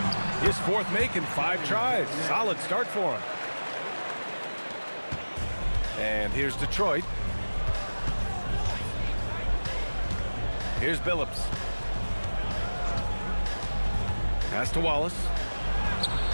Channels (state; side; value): inverted; both; correlation -1.00